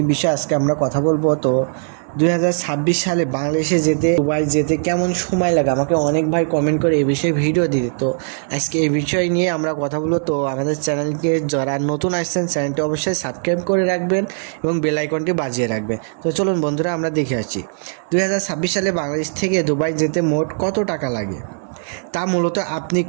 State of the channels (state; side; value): silent; left; digital silence